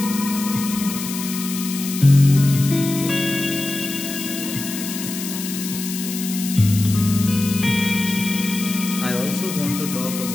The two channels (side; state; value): left; noise; hiss, 8 dB below the sound